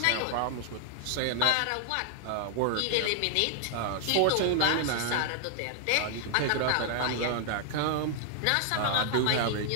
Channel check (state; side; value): different; both; correlation 0.00